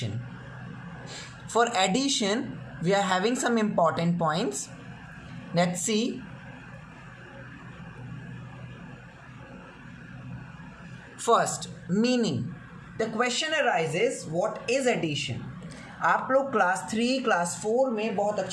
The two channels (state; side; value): identical; both; correlation 1.00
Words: For addition, we are having some important points. Let's see. First, meaning. The question arises, what is addition? आप लोग class 3 class 4 में बहुत